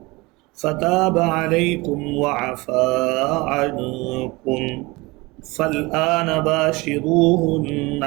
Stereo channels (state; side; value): quieter; left; 23.4 dB